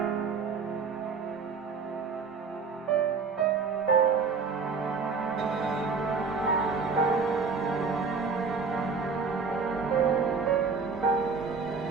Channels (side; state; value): left; quieter; 5.0 dB